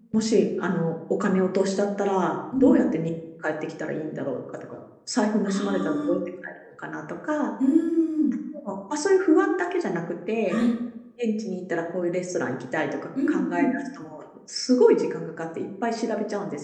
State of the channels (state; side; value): identical; both; correlation 1.00